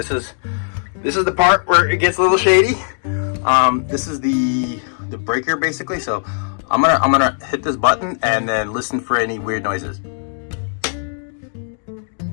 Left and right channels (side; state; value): right; silent; digital silence